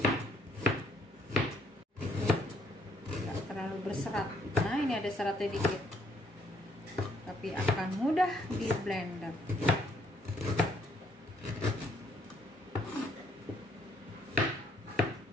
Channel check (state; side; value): normal; both; correlation 0.68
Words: tidak terlalu berserat. Nah ini ada seratnya dikit, tapi akan mudah di blender.